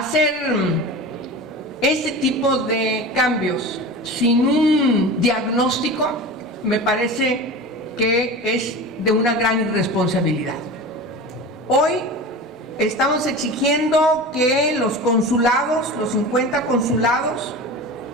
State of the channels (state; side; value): normal; both; correlation 0.32